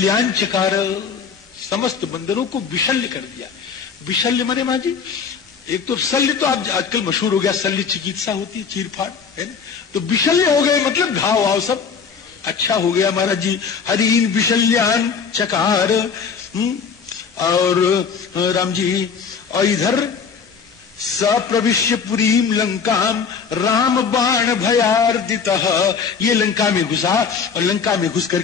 चकार, समस्त बंदरों को विशल्य कर दिया। विशल्य मने मां जी, एक तो शल्य तो आप आजकल मशहूर हो गया, शल्य चिकित्सा होती है, चीरफाड़ है ना, तो विशल्य हो गए मतलब घाव वाव सब अच्छा हो गया महाराज जी। हरीन विशल्यान चकार। और राम जी, और इधर सप्रविश्य पुरीम लंकाम राम बाण भयार्दितः, ये लंका में घुसा, और लंका में घुस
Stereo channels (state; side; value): quieter; right; 6.1 dB